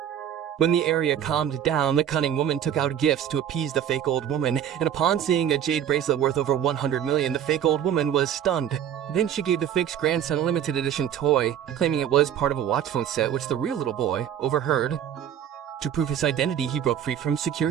When the area calmed down, the cunning woman took out gifts to appease the fake old woman, and upon seeing a jade bracelet worth over 100 million, the fake old woman was stunned. Then she gave the fake's grandson a limited edition toy, claiming it was part of a watch phone set, which the real little boy overheard. To prove his identity, he broke free from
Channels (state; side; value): quieter; left; 9.7 dB